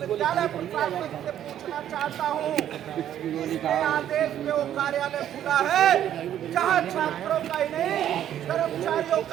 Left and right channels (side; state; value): left; quieter; 10.9 dB